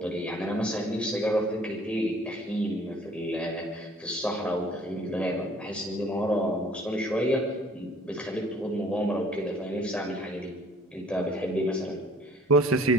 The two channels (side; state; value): both; normal; correlation 0.55